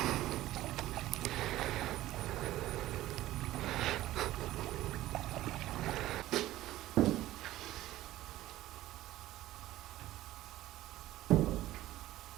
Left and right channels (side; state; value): left; quieter; 15.4 dB